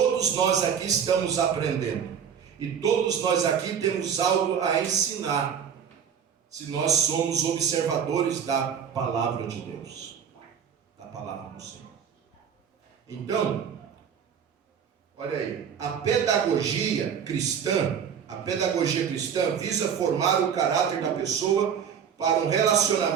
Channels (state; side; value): quieter; left; 7.7 dB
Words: nós aqui estamos aprendendo e todos nós aqui temos algo a ensinar, se nós somos observadores da palavra de Deus, da palavra do Senhor. Então, olha aí, a pedagogia cristã visa formar o caráter da pessoa para um